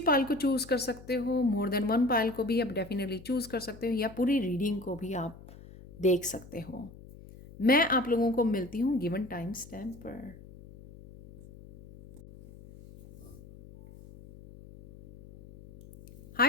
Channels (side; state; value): left; noise; hum, 19 dB below the sound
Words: को चूज़ कर सकते हो, मोर देन वन पाल को भी आप डेफिनेटली चूज़ कर सकते हो, या पूरी रीडिंग को भी आप देख सकते हो। मैं आप लोगों को मिलती हूँ गिवन टाइम स्टैम्प पर।